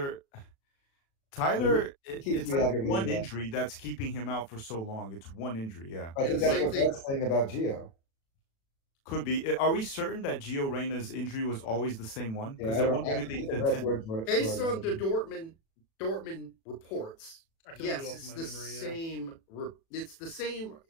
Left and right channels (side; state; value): right; late; 36 ms